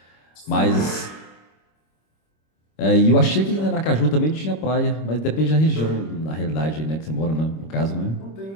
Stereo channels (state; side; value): late; right; 25 ms